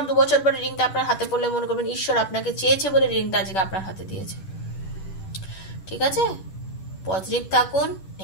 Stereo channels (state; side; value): late; right; 10 ms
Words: 2 বছর পর রিডিংটা আপনার হাতে পড়লে মনে করবেন ঈশ্বর আপনাকে চেয়েছে বলে রিডিংটা আজকে আপনার হাতে দিয়েছে। ঠিক আছে? পজিটিভ থাকুন,